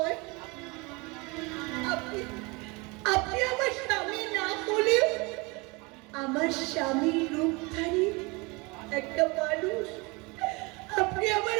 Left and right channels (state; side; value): quieter; left; 27.0 dB